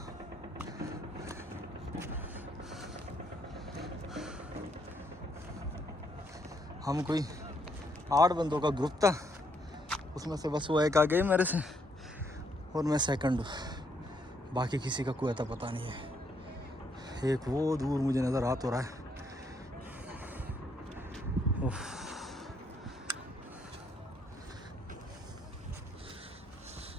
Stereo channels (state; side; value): normal; both; correlation 0.72